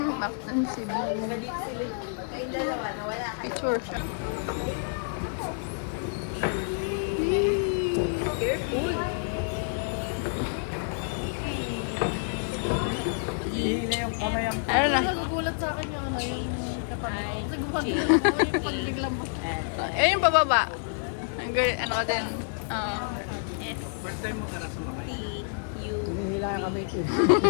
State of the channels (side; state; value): right; silent; digital silence